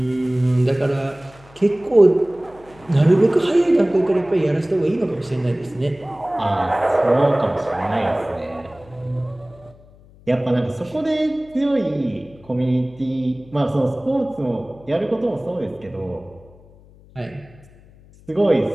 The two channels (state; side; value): noise; left; hum, 25 dB below the sound